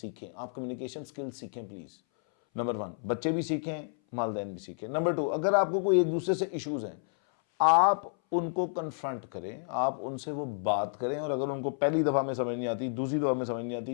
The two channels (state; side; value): silent; right; 57 dB below the other